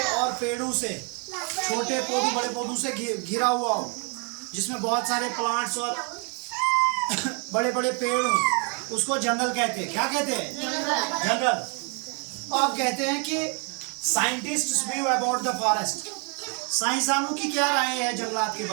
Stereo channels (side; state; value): left; quieter; 35.9 dB